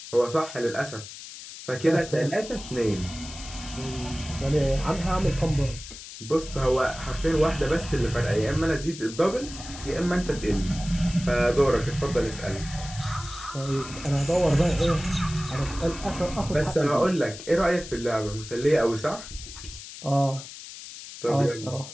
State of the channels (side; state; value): left; noise; hiss, 13 dB below the sound